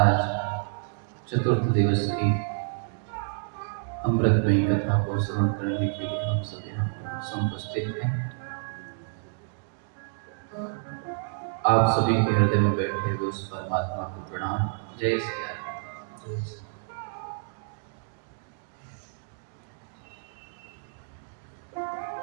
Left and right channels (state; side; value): silent; left; digital silence